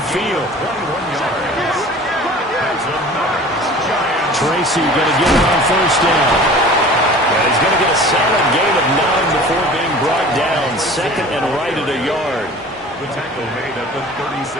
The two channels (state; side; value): normal; both; correlation 0.43